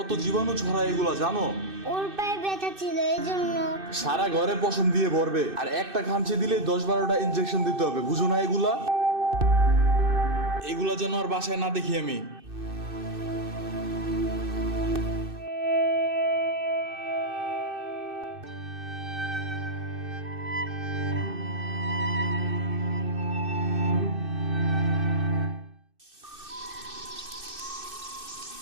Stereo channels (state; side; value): late; left; 2.6 ms